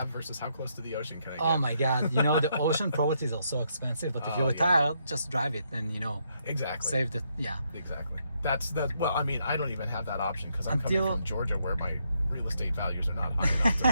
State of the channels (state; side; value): inverted; both; correlation -0.76